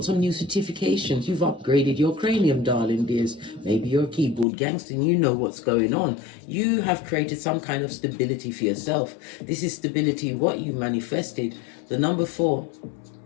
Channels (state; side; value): drops out; right; at 4.5 s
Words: some new certifications. You've upgraded your cranium, darling dears. Maybe you're a keyboard gangster and you know what's going on. You have created some kind of stability for yourself. This is stability, what you manifested. The number 4